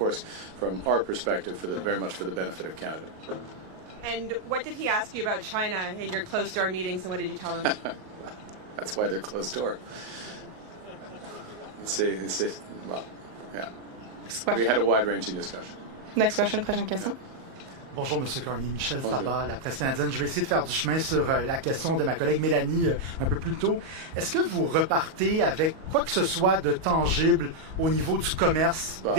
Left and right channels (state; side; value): late; left; 38 ms